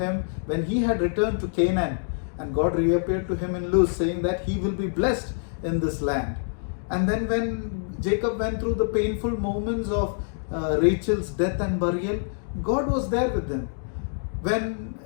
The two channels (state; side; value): silent; right; digital silence